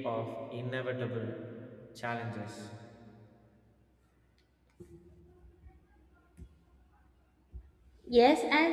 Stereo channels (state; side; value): identical; both; correlation 1.00